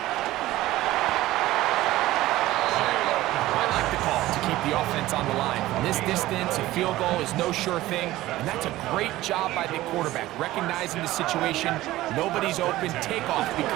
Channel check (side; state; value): left; quieter; 16.5 dB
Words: I like the call to keep the offense on the line. From this distance, a field goal is no sure thing, and that's a great job by the quarterback, recognizing the situation. Nobody's open, take off,